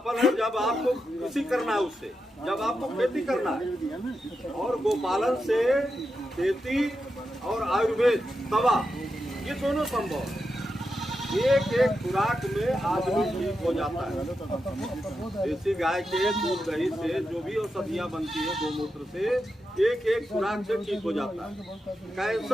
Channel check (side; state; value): both; normal; correlation 0.87